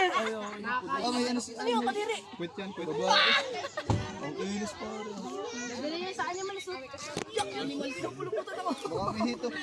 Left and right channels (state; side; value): identical; both; correlation 1.00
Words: May ano si Ano yung kadiri? Quit yan, quit. Babae. Ang ilis pa rin. Dali niya sa animals. Yak, animals. Puluputan ako. Baka may hito.